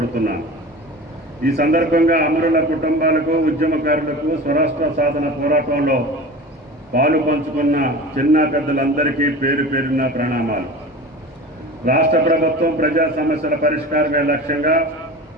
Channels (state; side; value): normal; both; correlation 0.34